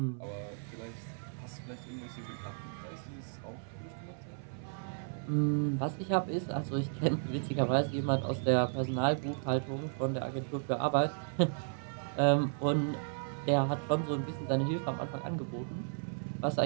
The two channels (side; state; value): left; silent; 55 dB below the other